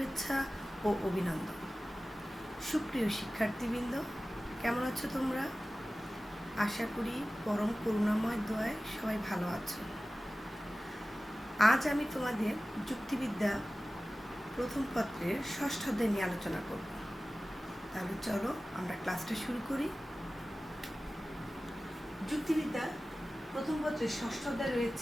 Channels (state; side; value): normal; both; correlation 0.96